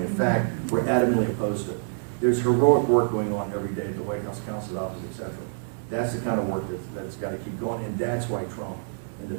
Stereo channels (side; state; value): left; silent; digital silence